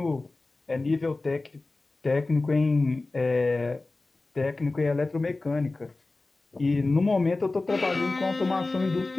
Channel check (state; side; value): quieter; right; 3.3 dB